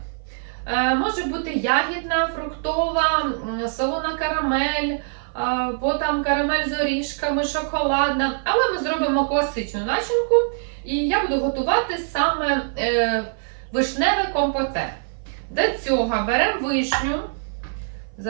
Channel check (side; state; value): left; silent; 56 dB below the other